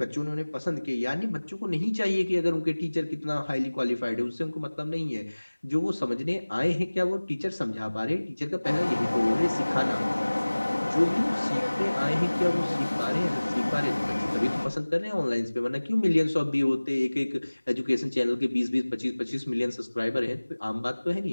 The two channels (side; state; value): both; inverted; correlation -1.00